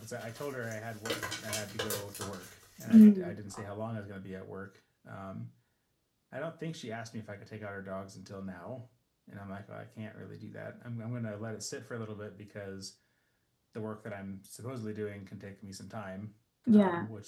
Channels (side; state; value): both; identical; correlation 1.00